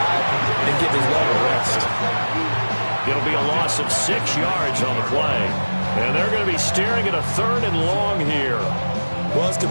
and give his leg a rest. It'll be a loss of 6 yards on the play. And they're going to be staring at a 3rd and long here. Well, his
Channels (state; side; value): inverted; both; correlation -1.00